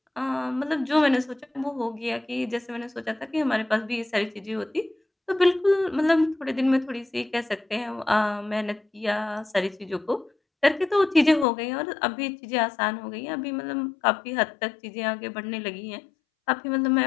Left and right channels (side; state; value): right; drops out; at 11.5 s